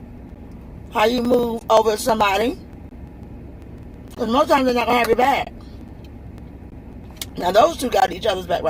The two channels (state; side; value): identical; both; correlation 1.00